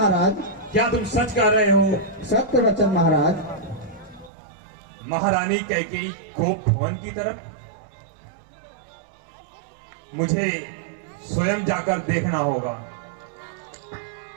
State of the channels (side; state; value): left; drops out; at 4.3 s